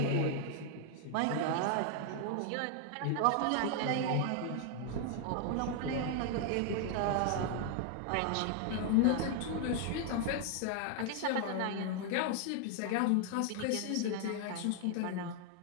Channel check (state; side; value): different; both; correlation 0.00